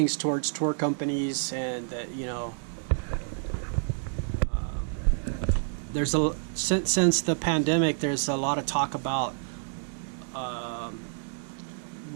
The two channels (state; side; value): silent; left; digital silence